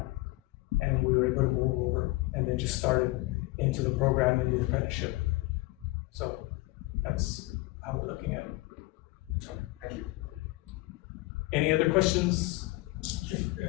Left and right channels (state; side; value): quieter; right; 21.3 dB